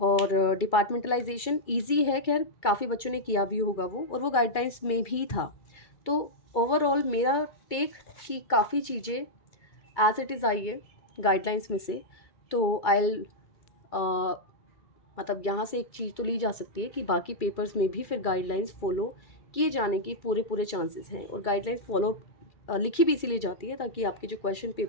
डिपार्टमेंटलाइजेशन इजी है, खैर काफ़ी बच्चों ने किया भी होगा वो, और वो गाइडलाइंस में भी था। तो ओवरऑल मेरा टेक कि काफ़ी चीज़ें एज इट इज़ आई है गाइडलाइंस में से। तो आई मतलब यहाँ से एक चीज़ तो ली जा सकती है कि बाकी पेपर्स में भी फिर गाइडलाइंस फॉलो किए जाने के पूरे पूरे चांसेस हैं, और गाइडलाइंस फॉलो लिखी भी इसीलिए जाती है ताकि आपके जो क्वेश्चन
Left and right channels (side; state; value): right; late; 2.3 ms